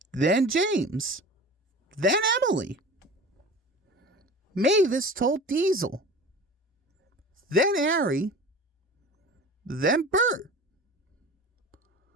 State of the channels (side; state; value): both; normal; correlation 0.37